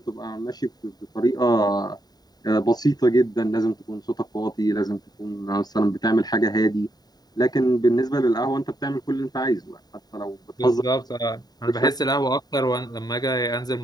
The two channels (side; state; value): right; late; 0.19 ms